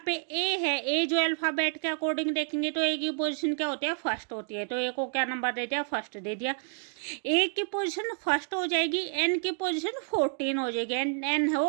पे A है, A जो अल्फाबेट के अकॉर्डिंग देखेंगे तो A की पोजीशन क्या होती है, फर्स्ट होती है। तो A को क्या नंबर दे दिया, फर्स्ट दे दिया। A की पोजीशन फर्स्ट हो जाएगी, N की पोजीशन 14 हो जाएगी, N है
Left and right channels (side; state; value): left; silent; 57 dB below the other